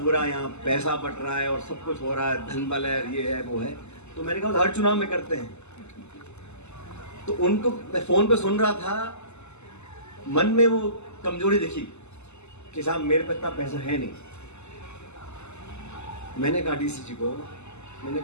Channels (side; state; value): right; late; 0.82 ms